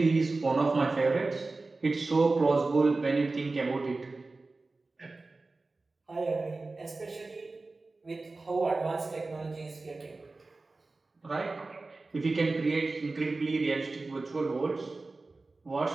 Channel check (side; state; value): left; quieter; 3.5 dB